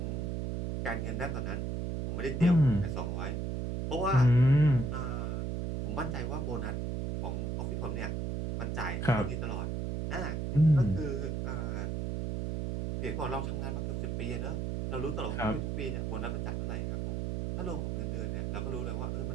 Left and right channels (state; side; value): noise; right; hum, 1 dB below the sound